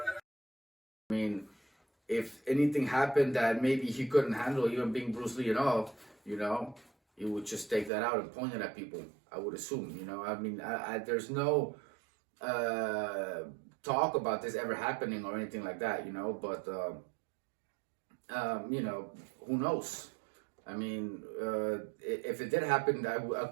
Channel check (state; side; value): drops out; left; at 7.9 s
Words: I mean, if anything happened that maybe he couldn't handle, even being Bruce Lee and all, you know, he would just take that out and point it at people, I would assume, you know. I mean, there's no talk about this ever happening or anything like that, you know, but, you know, who knows? I mean, if it did happen,